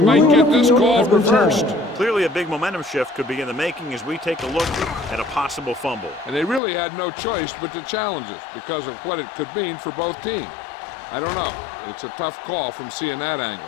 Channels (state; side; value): drops out; right; at 6.6 s